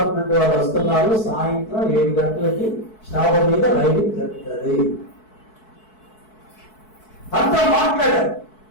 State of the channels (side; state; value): right; late; 4.6 ms